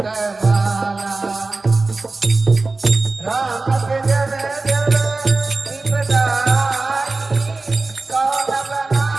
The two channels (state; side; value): quieter; left; 3.5 dB